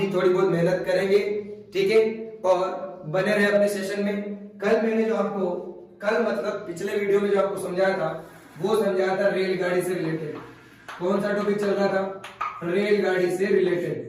थोड़ी बहुत मेहनत करेंगे। ठीक है, और बने रहे अपने सेशन में। कल मैंने जो आपको, कल मतलब पिछले वीडियो में जो आपको समझाया था, वो समझाया था रेलगाड़ी से रिलेटेड। कौन सा टॉपिक चल रहा था? रेलगाड़ी से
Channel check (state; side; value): identical; both; correlation 1.00